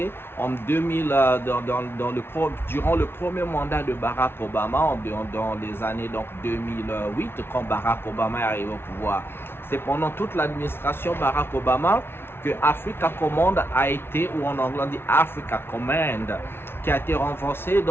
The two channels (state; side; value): late; right; 0.11 ms